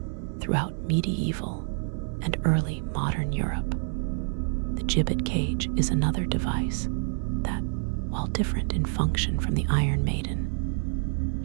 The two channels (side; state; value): left; silent; digital silence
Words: throughout medieval and early modern Europe. The gibbet cage is another device that, while different in function from the Iron Maiden,